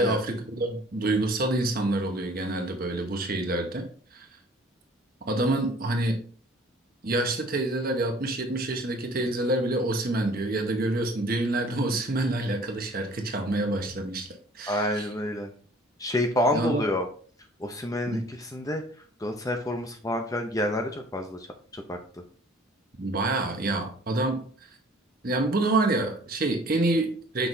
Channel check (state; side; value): normal; both; correlation 0.52